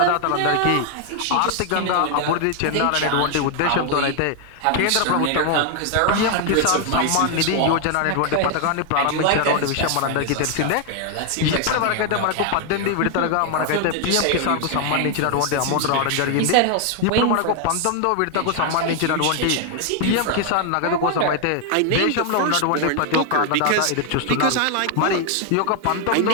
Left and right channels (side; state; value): both; different; correlation 0.00